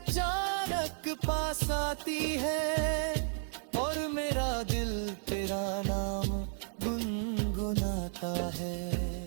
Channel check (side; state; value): left; silent; digital silence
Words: पास आती है, और मेरा दिल तेरा नाम गुनगुनाता है।